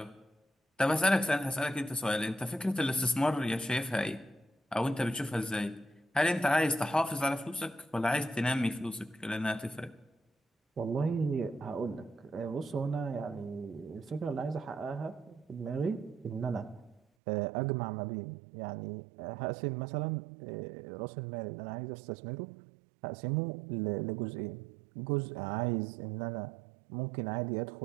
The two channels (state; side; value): drops out; left; at 17.0 s